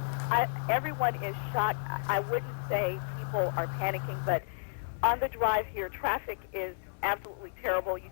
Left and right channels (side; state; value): right; silent; 56 dB below the other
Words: Everyone is shocked. I wouldn't say people are panicking, but on the drive here, traffic is absolutely terrible. You